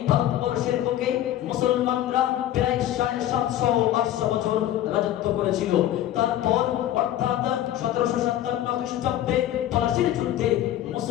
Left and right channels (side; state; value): right; quieter; 12.6 dB